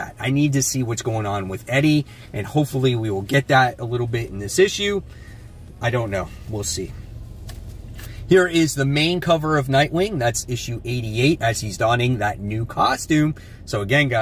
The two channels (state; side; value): identical; both; correlation 1.00